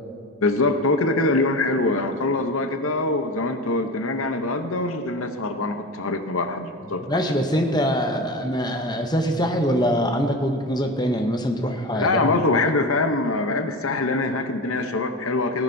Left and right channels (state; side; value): normal; both; correlation 0.26